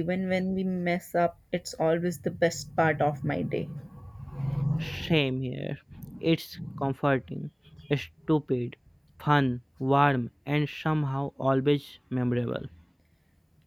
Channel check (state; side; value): identical; both; correlation 1.00